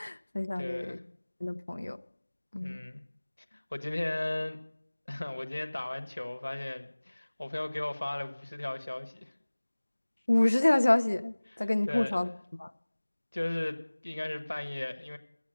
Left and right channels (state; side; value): inverted; both; correlation -1.00